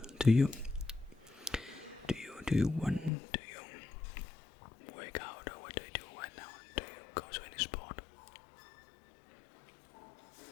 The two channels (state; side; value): drops out; right; at 3.1 s